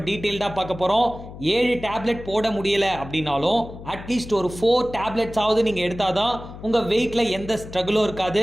டீட்டெயில்டாக பார்க்க போகிறோம். 7 டேப்லெட் போட முடியலை அப்படின்னாலும் அட்லீஸ்ட் ஒரு 4 டேப்லெட்ஸாவது நீங்கள் எடுத்தால் தான் உங்கள் வெயிட்டில் எந்த ஸ்ட்ரகிளும்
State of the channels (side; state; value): left; noise; hum, 14 dB below the sound